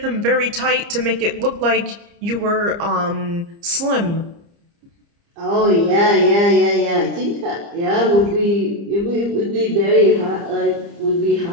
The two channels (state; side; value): late; left; 30 ms